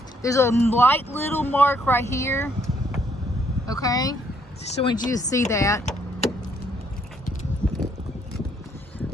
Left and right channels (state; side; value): normal; both; correlation 0.69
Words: There's a light little mark right here, okay? Just want you to see that.